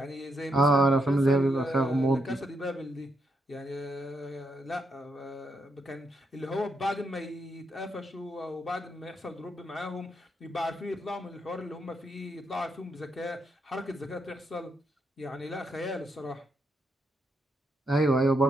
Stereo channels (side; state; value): both; normal; correlation 0.79